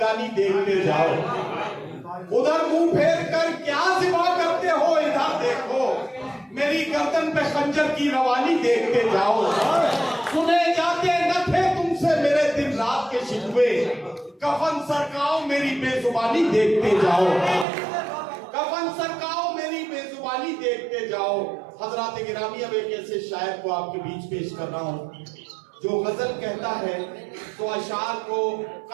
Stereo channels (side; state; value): left; drops out; at 17.7 s